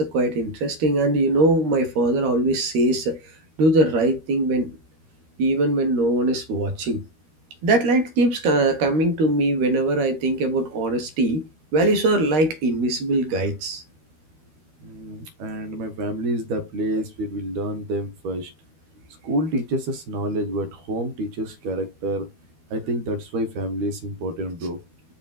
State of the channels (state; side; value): late; left; 12 ms